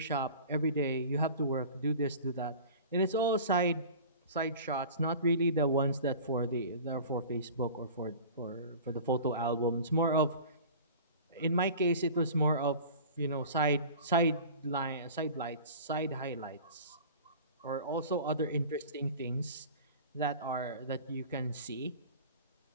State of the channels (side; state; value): both; inverted; correlation -0.40